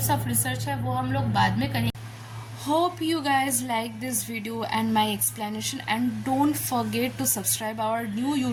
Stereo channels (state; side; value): identical; both; correlation 1.00